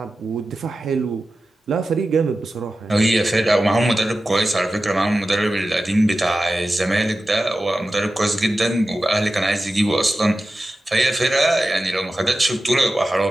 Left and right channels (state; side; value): normal; both; correlation 0.94